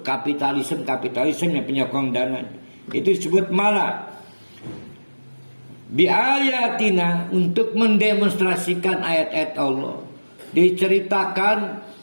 kapitalisme yang penyokong dana. Itu disebut mala. Biayatina, untuk mendemonstrasikan ayat-ayat Allah. Diceritakan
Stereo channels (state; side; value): inverted; both; correlation -1.00